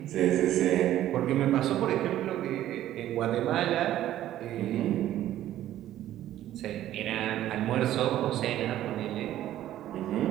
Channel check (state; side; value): quieter; left; 12.9 dB